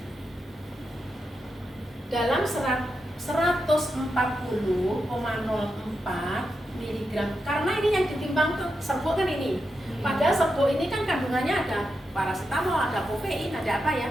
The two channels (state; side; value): normal; both; correlation 0.87